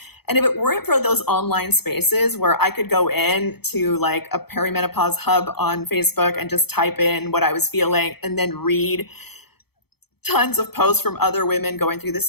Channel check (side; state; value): right; late; 0.97 ms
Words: And if it weren't for those online spaces where I could go in to like a perimenopause hub on Facebook and just type in what I was feeling and then read tons of posts from other women going through the